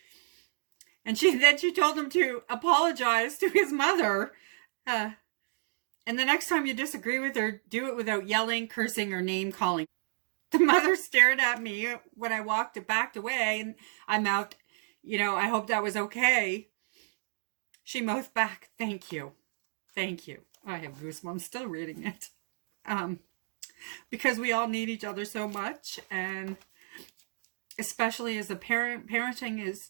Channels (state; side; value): silent; left; digital silence